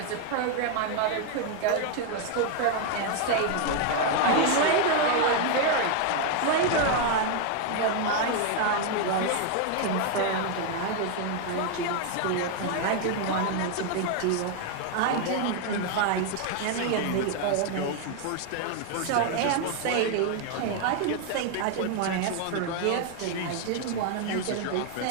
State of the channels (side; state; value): both; different; correlation 0.01